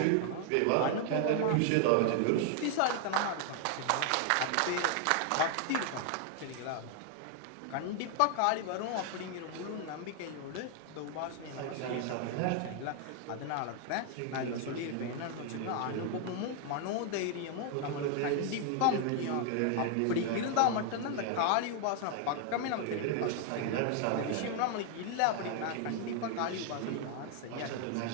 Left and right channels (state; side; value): different; both; correlation 0.00